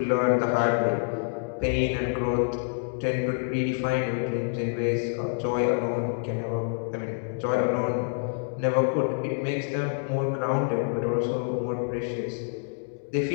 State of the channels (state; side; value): silent; right; digital silence